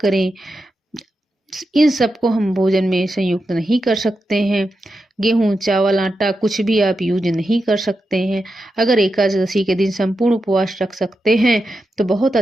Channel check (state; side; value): normal; both; correlation 0.88